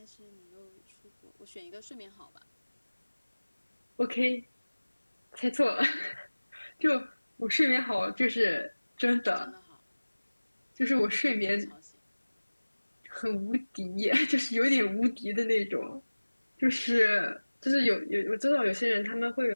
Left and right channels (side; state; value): both; inverted; correlation -1.00